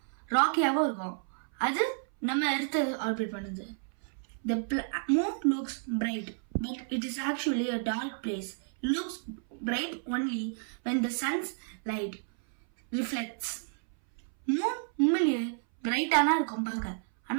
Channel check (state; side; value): silent; left; 57 dB below the other